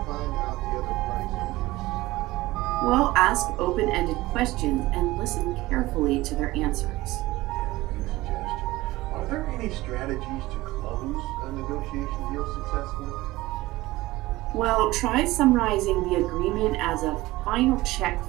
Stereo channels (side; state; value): left; quieter; 18.7 dB